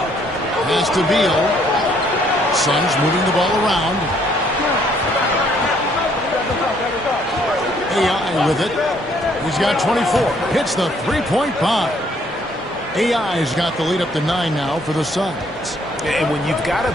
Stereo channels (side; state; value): both; normal; correlation 0.66